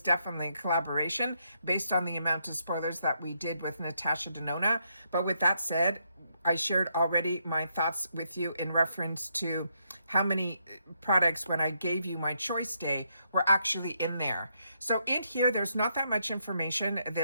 definitely a collaboration based on the amount of spoilers that we did with Natasha Denona. But with that said, I shared already my thoughts with you in reference to how many products, when I gave you my choice day, were actually in there. So in here, there's not that much information.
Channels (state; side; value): inverted; both; correlation -0.77